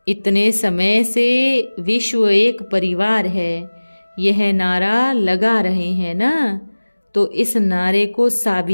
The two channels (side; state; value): both; inverted; correlation -1.00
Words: इतने समय से विश्व एक परिवार है, यह नारा लगा रहे हैं ना, तो इस नारे को